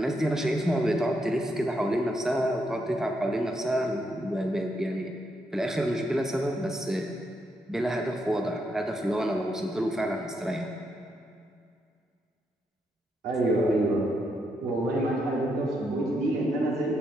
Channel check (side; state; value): both; normal; correlation 0.79